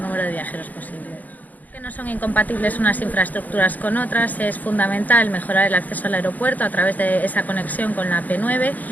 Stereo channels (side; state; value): right; late; 0.080 ms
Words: de viajeros posible. No son incompatibles unas infraestructuras con otras, es fundamental mejorar el acceso al aeropuerto a través de esa conexión con la P9,